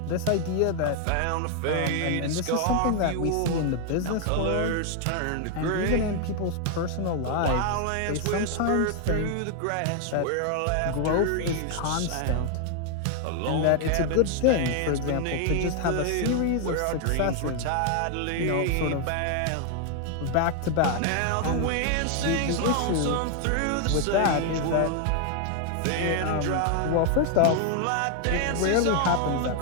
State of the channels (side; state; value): both; different; correlation 0.00